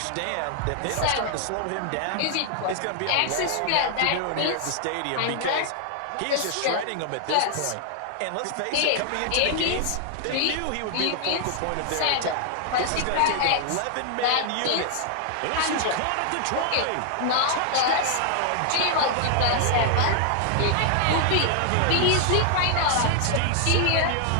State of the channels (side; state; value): both; different; correlation 0.00